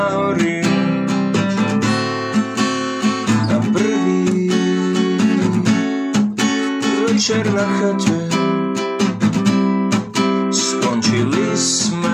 hory. Na prvý večer na chate skončili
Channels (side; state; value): both; identical; correlation 1.00